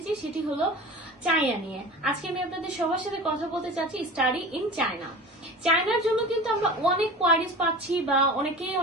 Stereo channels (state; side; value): normal; both; correlation 0.36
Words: সেটি হলো চায়না নিয়ে। আজকে আমি আপনাদের সবার সাথে কথা বলতে চাচ্ছি স্টাডি ইন চায়না। চায়নার জন্য কিন্তু আমরা অনেক কোয়ারিজ পাচ্ছি বা অনেকেই